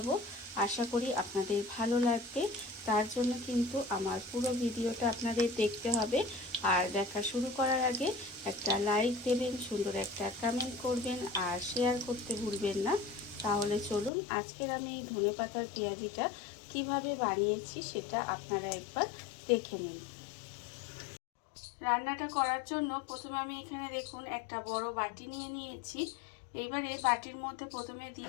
আশা করি আপনাদের ভালো লাগবে। তার জন্য কিন্তু আমার পুরো ভিডিওটা আপনাদের দেখতে হবে। আর দেখা শুরু করার আগে একটা লাইক দেবেন, সুন্দর একটা কমেন্ট করবেন আর শেয়ার করতে ভুলবেন না। তাহলে চলুন আজকের আমি এই ধনেপাতার পেঁয়াজিটা কিভাবে বানিয়েছি সেটা আপনারা একবার দেখে নিন। রান্নাটা করার জন্য প্রথমে আমি এখানে দেখুন একটা বড় বাটি নিয়ে নিয়েছি। এইবারে বাটির মধ্যে প্রথমে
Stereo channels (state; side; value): drops out; right; at 14.1 s